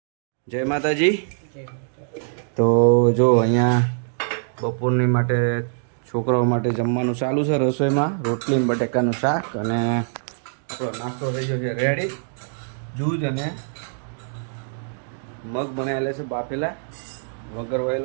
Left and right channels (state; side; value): silent; left; digital silence